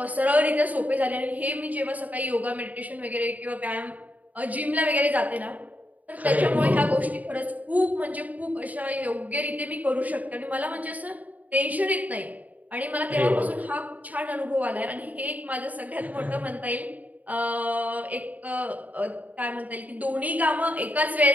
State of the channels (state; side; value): late; left; 0.075 ms